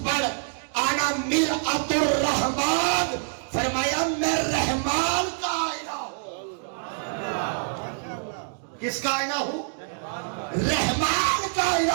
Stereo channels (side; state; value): left; silent; digital silence